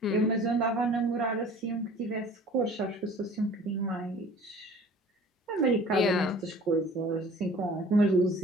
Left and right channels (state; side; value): normal; both; correlation 0.47